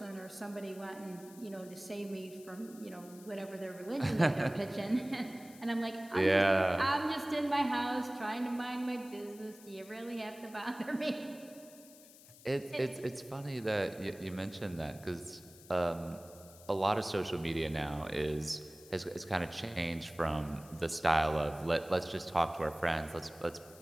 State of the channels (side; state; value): left; noise; hiss, 21 dB below the sound